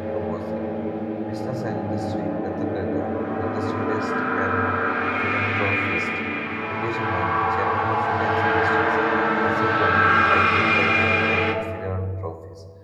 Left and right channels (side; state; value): both; identical; correlation 1.00